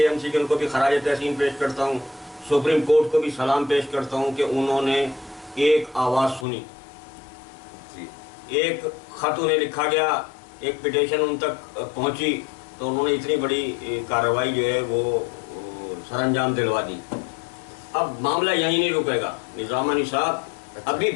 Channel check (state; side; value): drops out; right; at 6.5 s